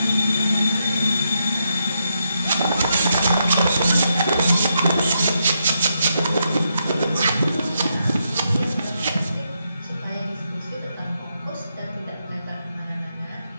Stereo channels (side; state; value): both; inverted; correlation -0.81